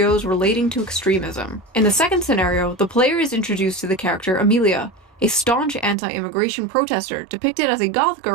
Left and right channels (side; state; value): left; drops out; at 6.0 s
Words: relating to extremism. In the second scenario, the player is introduced to the character Amelia, a staunch anti-immigration protester depicted as a goth